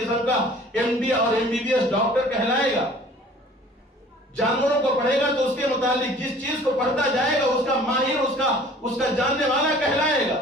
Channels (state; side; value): normal; both; correlation 0.49